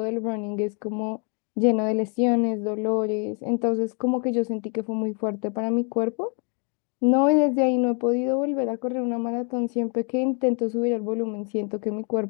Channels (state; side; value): quieter; right; 38.8 dB